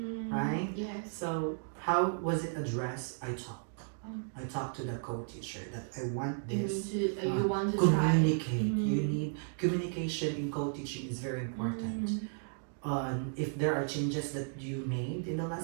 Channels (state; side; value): silent; left; digital silence